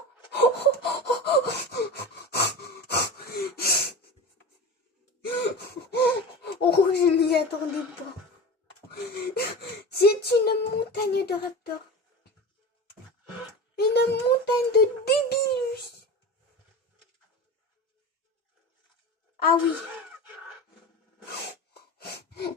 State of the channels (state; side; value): normal; both; correlation 0.30